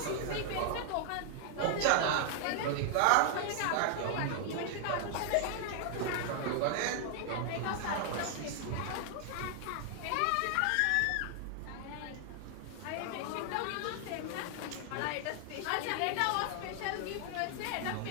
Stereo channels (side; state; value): both; different; correlation 0.00